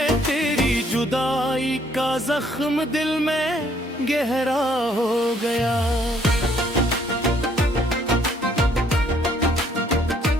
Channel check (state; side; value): normal; both; correlation 0.65